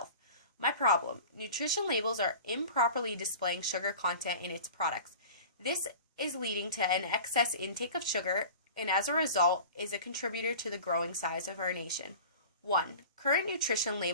My problem: nutrition labels are improperly displaying sugar content in its products. This is leading to an excess intake of sugar, and as a result is a contributor to the growing size of our nation. 1. Current nutrition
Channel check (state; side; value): inverted; both; correlation -0.38